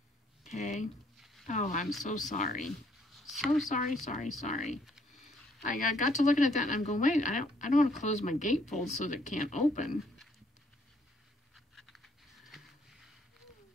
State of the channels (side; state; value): both; normal; correlation 0.67